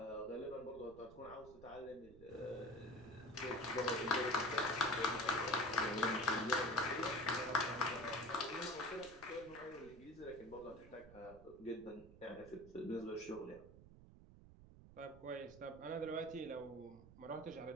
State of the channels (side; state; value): right; noise; rumble, 19 dB below the sound